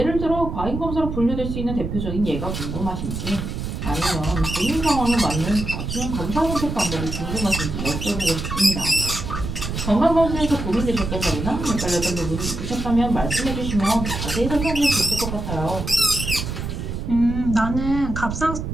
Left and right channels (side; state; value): right; noise; rumble, 5 dB below the sound